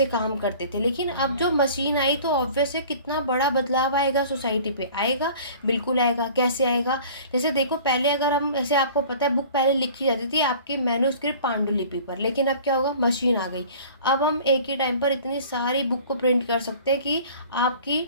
काम करते थे। लेकिन अब जो मशीन आई तो ऑब्वियस है कितना बड़ा बदलाव आएगा सोसाइटी पे, आएगा, बिल्कुल आएगा। कैसे आएगा? जैसे देखो, पहले अगर हम, ऐसे आपको पता है, बुक पहले लिखी जाती थी आपकी मैन्युस्क्रिप्ट पांडुलिपि पर, लेकिन अब क्या होगा, मशीन आ गई। अब हम एक ही टाइम पर इतनी सारी बुक को प्रिंट कर सकते हैं कि आपकी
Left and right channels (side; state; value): both; inverted; correlation -0.46